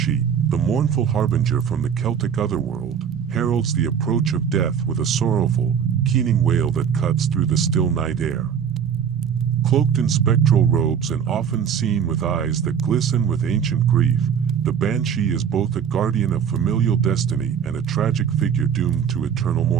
the mournful harbinger from the Celtic otherworld, heralds the approach of death with a sorrowful, keening wail that cuts through the still night air. Cloaked in spectral robes and often seen with eyes that glisten with ancient grief, the Banshee is both a guardian of familial destiny and a tragic figure doomed to eternal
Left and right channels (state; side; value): quieter; left; 7.8 dB